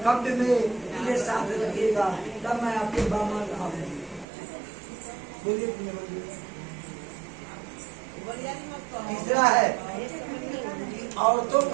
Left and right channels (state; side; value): drops out; left; at 4.2 s